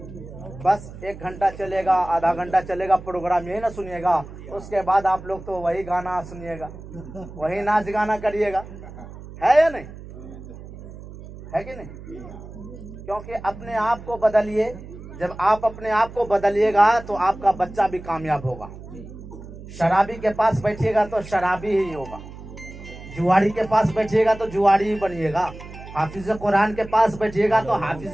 बस 1 घंटा चलेगा, आधा घंटा चलेगा प्रोग्राम, यही ना सुनिएगा। उसके बाद आप लोग तो वही गाना सुनिएगा, वही नाच गाना करिएगा, है या नहीं, है कि नहीं? क्योंकि अपने आप को बदलिए। जब आप अपने आप को बदलिएगा तो आपका बच्चा भी कामयाब होगा। शराबी के पास बैठिएगा तो शराबी ही होगा, जुआरी के पास बैठिएगा तो जुआरी ही बनिएगा, हाफिज कुरान के पास बैठिएगा तो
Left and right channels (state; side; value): noise; right; hum, 15 dB below the sound